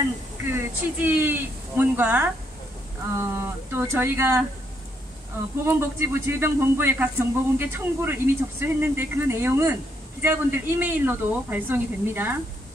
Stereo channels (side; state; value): both; normal; correlation 0.75